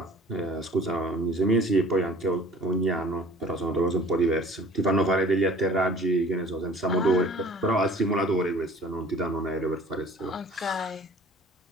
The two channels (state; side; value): normal; both; correlation 0.48